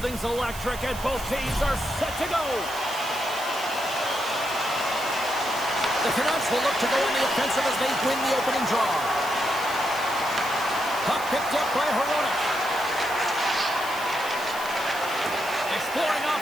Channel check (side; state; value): right; noise; hiss, 13 dB below the sound